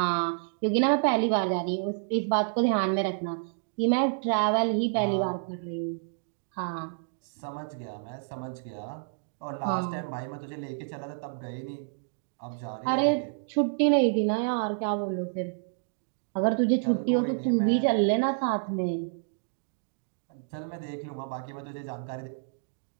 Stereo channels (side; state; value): left; silent; digital silence